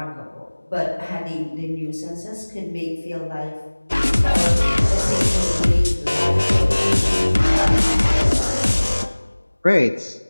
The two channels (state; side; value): inverted; both; correlation -1.00